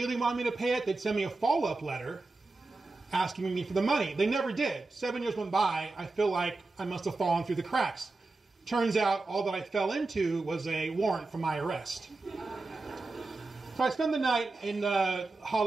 wanted me to pay it, they'd send me a follow-up letter asking me for the money. They never did. 7 years went by. I feel like I must have fallen through the cracks. Turns out all that I fell into was a warrant for my arrest. So I spend the night in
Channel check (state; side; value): quieter; left; 3.4 dB